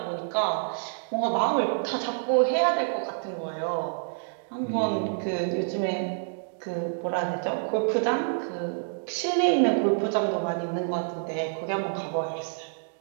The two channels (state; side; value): silent; left; digital silence